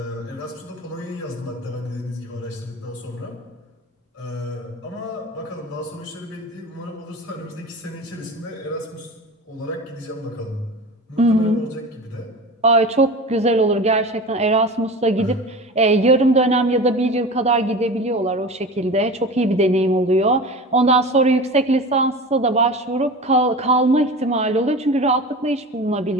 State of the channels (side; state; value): both; normal; correlation 0.33